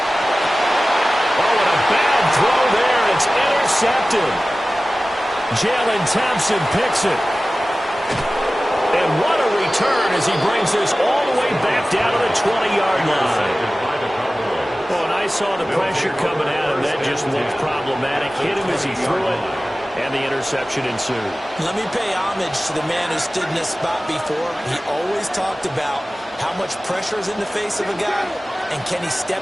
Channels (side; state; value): both; normal; correlation 0.97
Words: Oh, and a bad throw there. It's intercepted. Jalen Thompson picks it. And what a return as he brings this all the way back down to the 20-yard line. Well, and I saw the pressure coming at him. That just looked problematic. Hit him as he threw it, and the interception ensued. Let me pay homage to the man who stood in this spot before. He always talked about how much pressure is in the face of a guy, and can he step